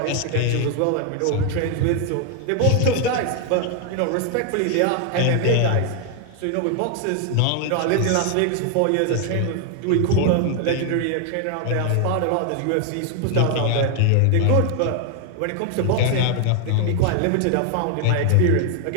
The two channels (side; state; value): both; different; correlation 0.00